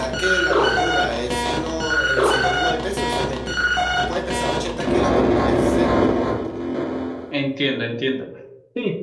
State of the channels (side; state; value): both; identical; correlation 1.00